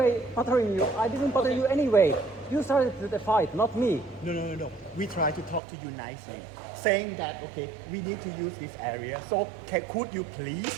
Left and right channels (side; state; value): left; drops out; at 5.6 s